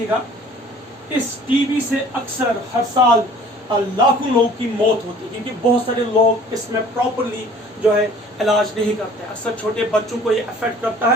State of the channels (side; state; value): both; normal; correlation 0.50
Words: इस टीबी से अक्सर हर साल लाखों लोगों की मौत होती है, क्योंकि बहुत सारे लोग इसमें प्रॉपरली जो है इलाज नहीं करते। अक्सर छोटे बच्चों को ये अफेक्ट करता